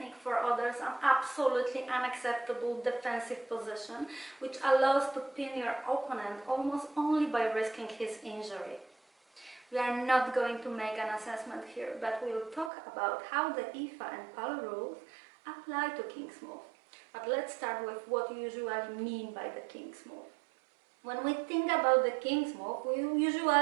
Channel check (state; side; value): drops out; left; at 12.7 s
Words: for others an absolutely unacceptable defensive position which allows to pin your opponent almost only by risking his injury. We are not going to make an assessment here, but we will talk about how the IFA and PAL rules apply to King's Move. But let's start with what we usually mean by the King's Move. When we think about the King's Move, we